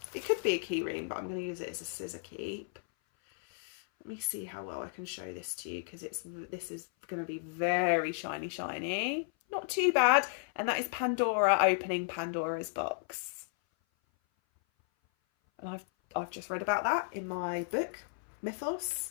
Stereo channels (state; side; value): silent; right; 55 dB below the other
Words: It could be a key ring, but I'm going to use it as a scissor keep. Let me see how well I can show this to you, because this is going to be very shiny. Not too bad. And that is Pandora opening Pandora's box. And I've just read about that in my book, Mythos.